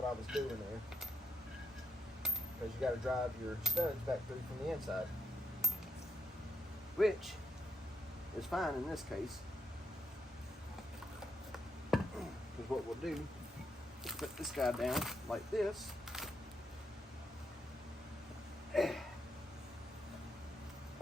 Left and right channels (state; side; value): normal; both; correlation 0.80